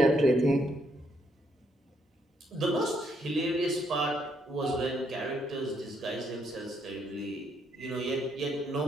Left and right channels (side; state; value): both; normal; correlation 0.73